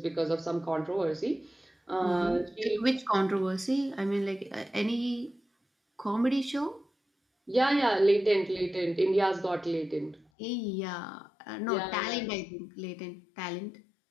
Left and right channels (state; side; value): drops out; right; at 10.2 s